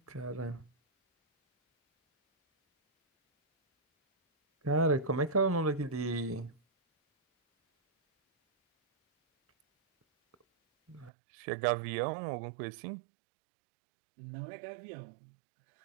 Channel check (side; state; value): left; drops out; at 11.1 s